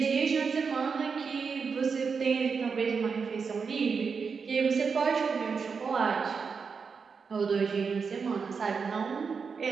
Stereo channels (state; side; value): quieter; left; 5.5 dB